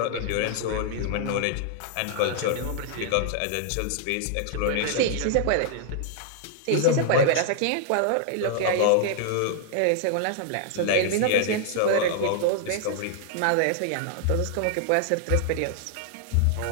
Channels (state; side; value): different; both; correlation 0.00